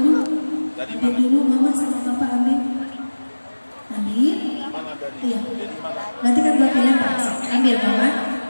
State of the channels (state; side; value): inverted; both; correlation -1.00